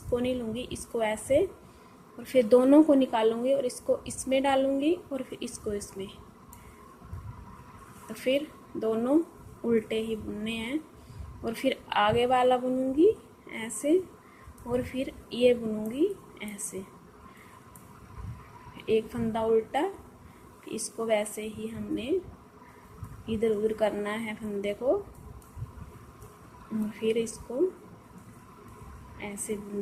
नहीं लूँगी, इसको ऐसे और फिर दोनों को निकालूंगी और इसको इसमें डालूंगी और फिर इसको इसमें, तो फिर दोनों उल्टे ही बुनने हैं। और फिर आगे वाला बुनूंगी ऐसे और फिर ये बुनूंगी ऐसे, एक फंदा उल्टा, इसको वैसे ही हमने इधर उधर करना है फंदे को और फिर इसको ऐसे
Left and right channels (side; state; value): both; identical; correlation 1.00